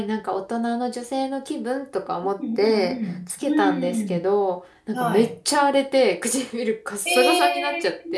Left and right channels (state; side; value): identical; both; correlation 1.00